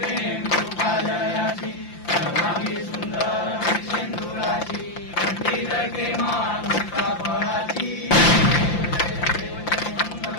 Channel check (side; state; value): right; late; 5.8 ms